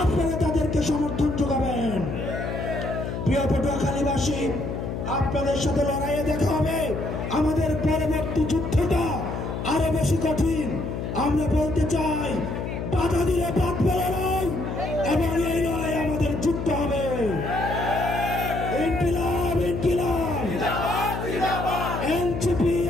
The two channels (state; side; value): noise; left; hum, 4 dB below the sound